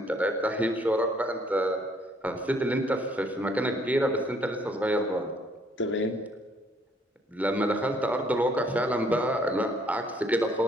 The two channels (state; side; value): normal; both; correlation 0.64